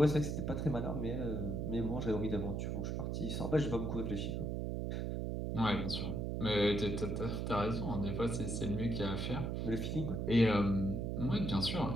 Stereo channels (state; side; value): noise; right; hum, 1 dB below the sound